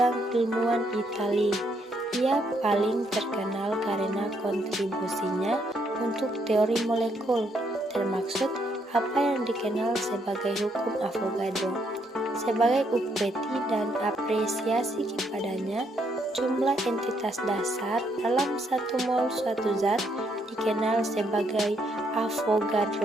ilmuwan Italia. Ia paling terkenal karena kontribusinya untuk teori molekul, termaksud apa yang dikenal sebagai hukum Avogadro. Sebagai upeti dan apresiasi kepadanya, jumlah entitas dasar dalam satu mol suatu zat dikenal sebagai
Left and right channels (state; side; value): normal; both; correlation 0.74